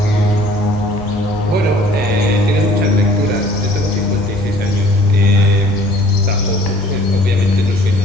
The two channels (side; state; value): right; noise; rumble, 17 dB below the sound